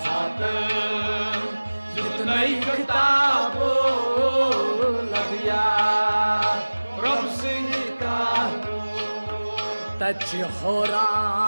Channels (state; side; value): inverted; both; correlation -1.00